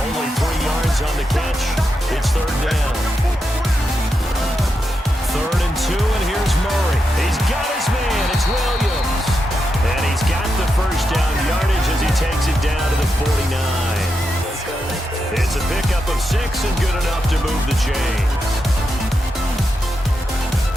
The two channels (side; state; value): both; normal; correlation 0.86